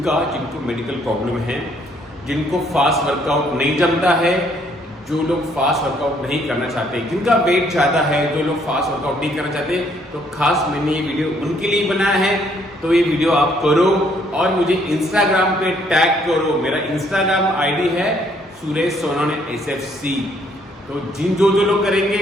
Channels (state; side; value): normal; both; correlation 0.67